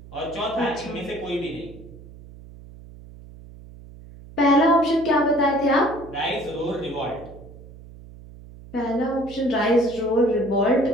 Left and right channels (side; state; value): right; noise; hum, 18 dB below the sound